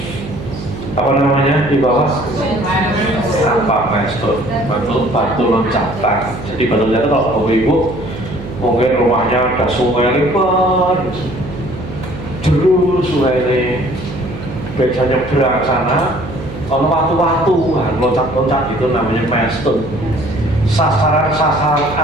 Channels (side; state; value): right; noise; hum, 11 dB below the sound